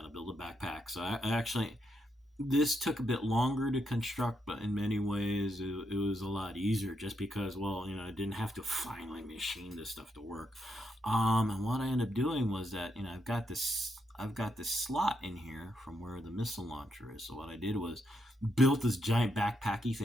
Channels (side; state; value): both; normal; correlation 0.80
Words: build a backpack. So I actually, this took a bit longer to construct, but in many ways it was a lot easier just because, I didn't have to finally machine this stuff to work. And what I ended up doing was that, I've got this slot in here from where the missile launcher is. So what I did was built this giant backpacky